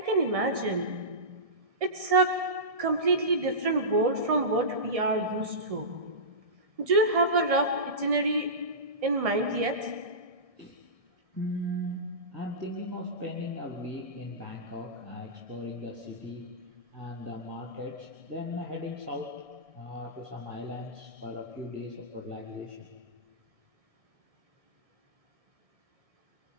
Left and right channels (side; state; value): left; late; 1.6 ms